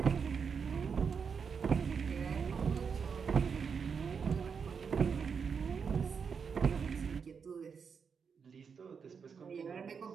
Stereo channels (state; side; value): quieter; left; 6.2 dB